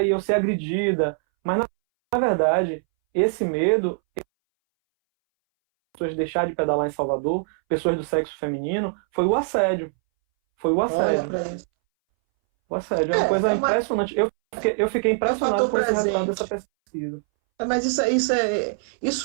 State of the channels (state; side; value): silent; left; 62 dB below the other